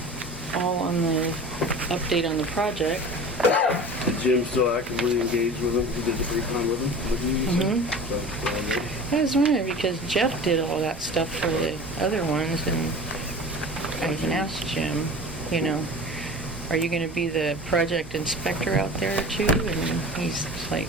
all on the update on the project. Did Jim still actively engage with him? He did the pre-con with him? With you, you said? So, I was wondering, because Jeff did all that stuff for the other ones, and I even asked Jim, are you gonna be the project inspector out there too? And he's like,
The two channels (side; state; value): both; normal; correlation 0.37